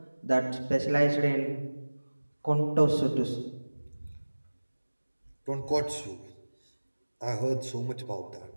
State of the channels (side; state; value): both; inverted; correlation -1.00